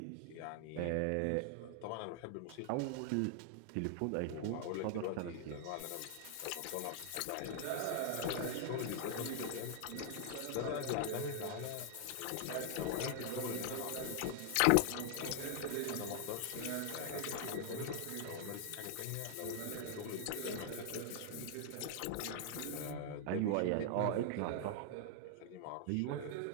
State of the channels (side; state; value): both; different; correlation 0.00